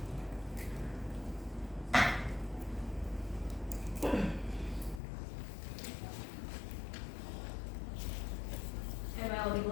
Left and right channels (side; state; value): right; drops out; at 5.0 s